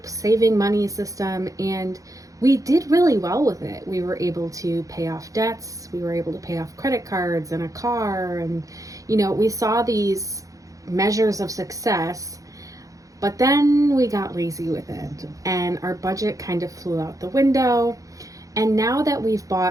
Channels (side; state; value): left; late; 0.16 ms